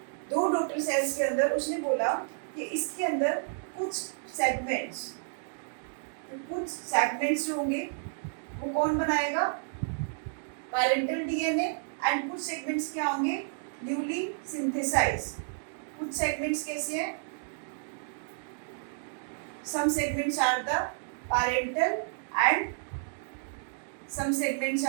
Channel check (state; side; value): silent; left; digital silence